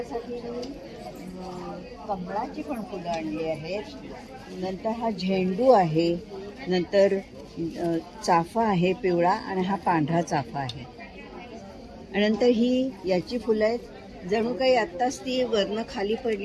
मी कमळाची पण फुलं आणली आहेत. नंतर हा झेंडू आहे, नंतर चाफा आहे पिवळा, आणि हा पांढरा चाफा आहे. आणि नंतर ही याची फुलं आहेत, जणू काही आत्ताच ती वरनं खाली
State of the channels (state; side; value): identical; both; correlation 1.00